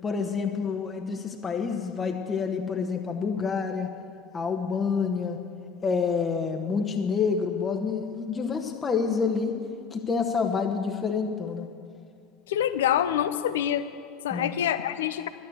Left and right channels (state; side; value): quieter; right; 6.2 dB